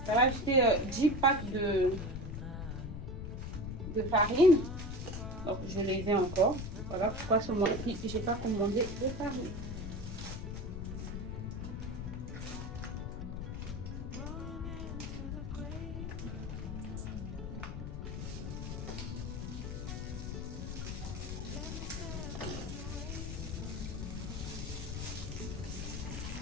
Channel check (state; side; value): noise; left; rumble, 5 dB below the sound